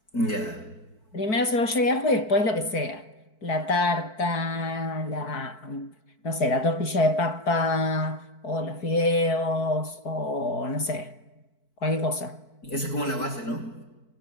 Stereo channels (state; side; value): late; right; 4.6 ms